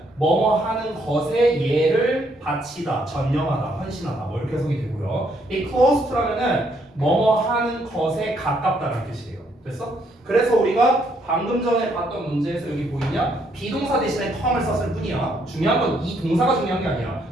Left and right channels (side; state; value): both; normal; correlation 0.71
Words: 뭐뭐 하는 것에 얘를 바치다, 전념하다, 헌신하다 뭐 이렇게 해석이 되고요. 이 close to라면은 뭐뭐 하는 것에 가깝다는 뜻이에요. 됐어? 그래서 우리가 방금 전에 봤던 문제에서 여기 보이냐? 비동사 대신에 come을 썼을 뿐이야. 중요한 건 이 동사가 중요한 게 아니야.